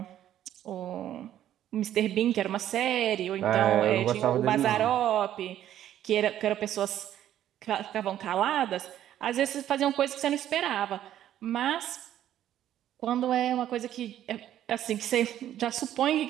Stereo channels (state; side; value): quieter; left; 11.6 dB